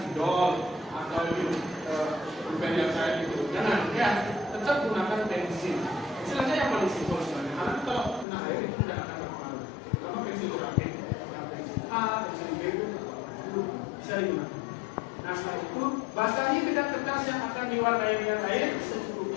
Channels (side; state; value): right; drops out; at 8.2 s